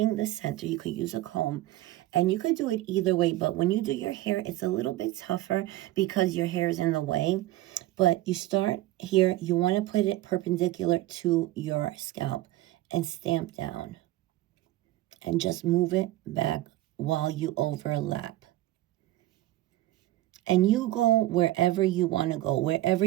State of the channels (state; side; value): quieter; left; 15.9 dB